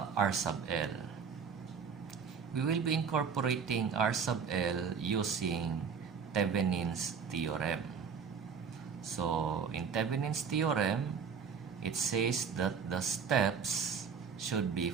R sub L? We will be incorporating R sub L using Thevenin's theorem. So, in Thevenin's theorem, it says that the steps should be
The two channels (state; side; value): quieter; left; 6.4 dB